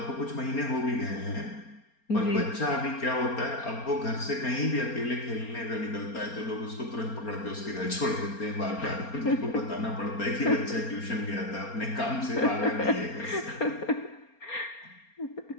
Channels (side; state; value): right; late; 4.3 ms